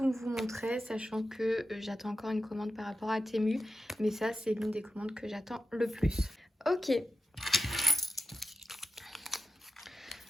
vous montrer, sachant que j'attends encore une commande par rapport à Temu. Mais ça, c'est l'une des commandes que j'attends le plus. Ok.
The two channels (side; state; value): both; normal; correlation 0.89